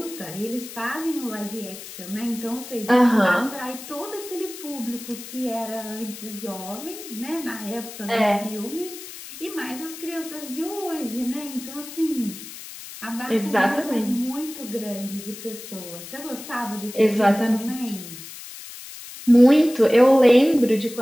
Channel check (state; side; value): noise; left; hiss, 13 dB below the sound